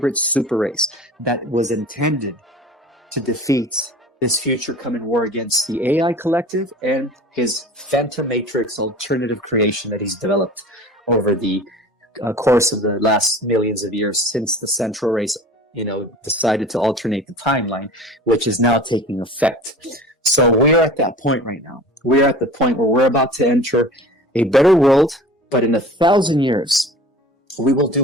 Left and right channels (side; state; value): both; normal; correlation 0.40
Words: super race that was intended to defeat this future coming war against the AI collective and his Phantom Matrix alternative creation that he's developed over the course of the last millions of years since the central race, decided to alternate the timeline, which is now taking effect. So we're at that point right now. We're at the point where we're about to enter a better world, but in 1,000 years, we will do